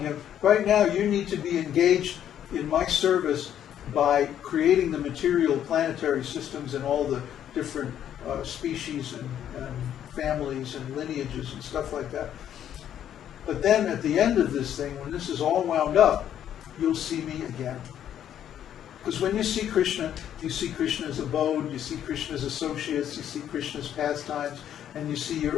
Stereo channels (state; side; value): quieter; right; 10.2 dB